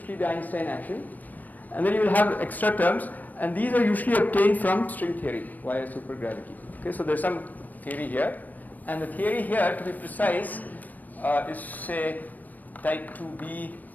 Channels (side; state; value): right; late; 0.084 ms